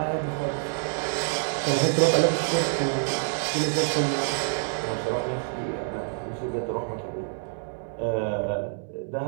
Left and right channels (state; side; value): silent; left; digital silence